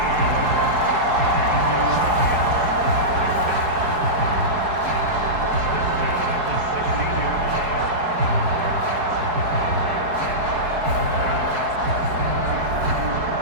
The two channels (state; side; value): late; left; 4.7 ms